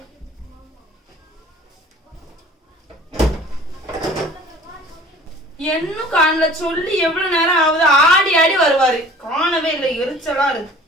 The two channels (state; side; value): normal; both; correlation 0.47